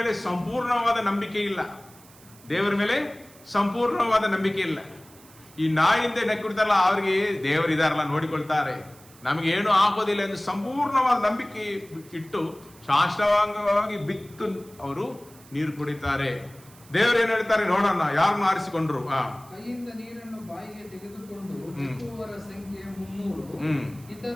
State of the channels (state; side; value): noise; right; hiss, 24 dB below the sound